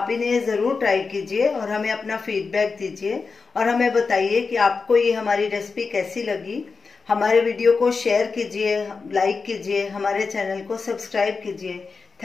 इन्हें ज़रूर ट्राई कीजिए और हमें अपना फीडबैक दीजिए और हमें बताइए कि आपको ये हमारी रेसिपी कैसी लगी। हमारे वीडियो को शेयर कीजिए, लाइक कीजिए, हमारे चैनल को सब्सक्राइब कीजिए।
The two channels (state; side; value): quieter; right; 4.7 dB